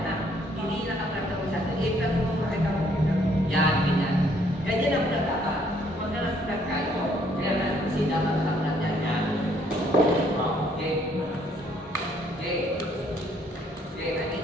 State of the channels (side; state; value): both; normal; correlation 0.65